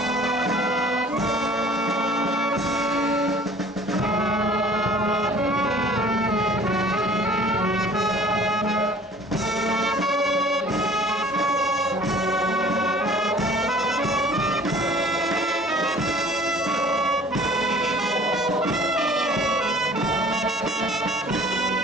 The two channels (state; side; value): normal; both; correlation 0.50